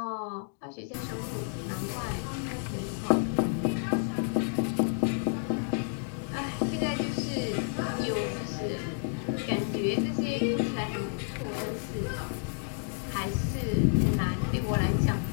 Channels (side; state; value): right; silent; 58 dB below the other